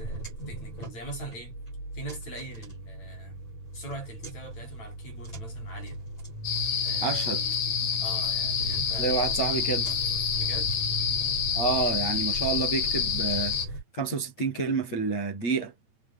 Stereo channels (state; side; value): late; right; 8.8 ms